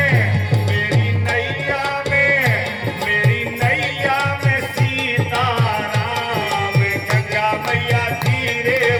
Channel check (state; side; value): identical; both; correlation 1.00